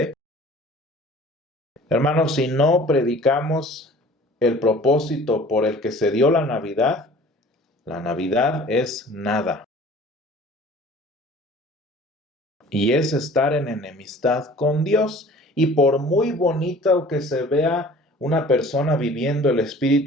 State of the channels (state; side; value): normal; both; correlation 0.47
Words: hermanos, si no predicamos el propósito por el que se dio la Navidad es nada. Y es estar en enemistad con Dios. Y por muy bonito que se vea una persona viviendo el